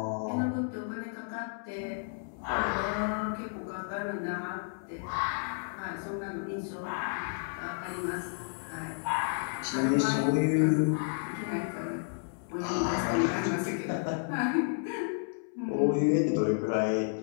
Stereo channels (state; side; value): silent; right; 57 dB below the other